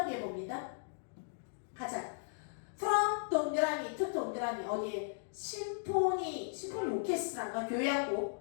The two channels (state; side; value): silent; right; digital silence